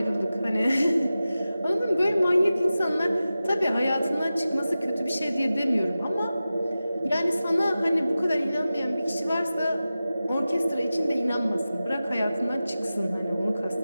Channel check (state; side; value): inverted; both; correlation -0.94